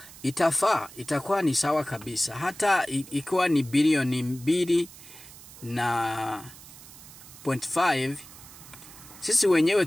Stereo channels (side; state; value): right; noise; hiss, 18 dB below the sound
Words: itakuwa ni sawa kabisa. Hata ikiwa ni bilioni 2.5, sisi wenyewe